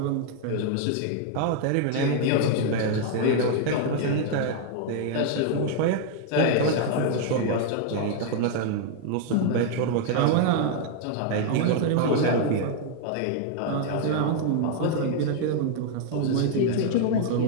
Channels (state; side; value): different; both; correlation 0.00